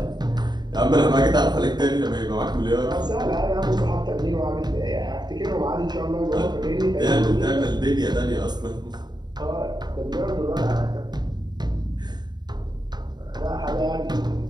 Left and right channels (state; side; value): late; left; 0.20 ms